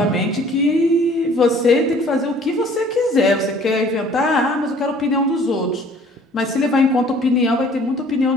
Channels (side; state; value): both; normal; correlation 0.54